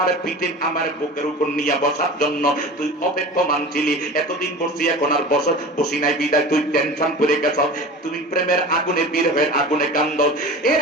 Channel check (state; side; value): normal; both; correlation 0.36